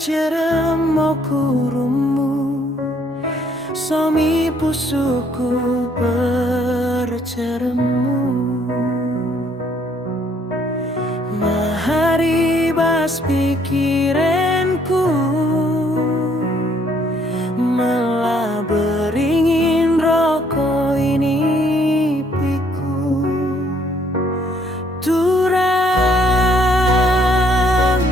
kurumu, somi pusuku berceremu. Maharibas pikiranku, malah beringin rokok ini piku. Turang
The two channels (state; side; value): normal; both; correlation 0.65